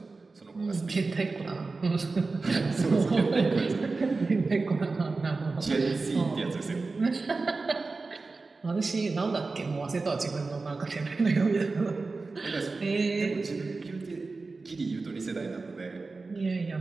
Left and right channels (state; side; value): quieter; left; 3.8 dB